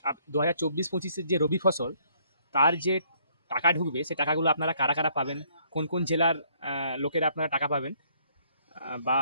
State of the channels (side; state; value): both; inverted; correlation -0.65